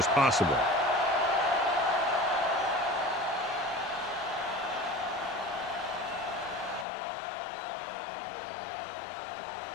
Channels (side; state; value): right; drops out; at 6.9 s